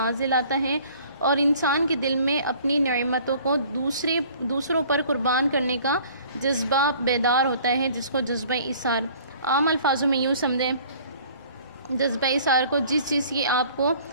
دلاتا ہے، اور انسان کے دل میں اپنی نعمتوں کو دوسروں پر قربان کرنے کا جذبہ بیدار ہوتا ہے، جس کو جذبہ ایثار، عام الفاظوں میں یوں سمجھیں، جذبہ ایثار کو جس چیز کی آپ کو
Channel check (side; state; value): both; inverted; correlation -0.52